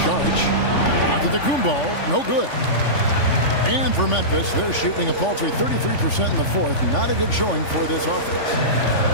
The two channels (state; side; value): late; right; 3.5 ms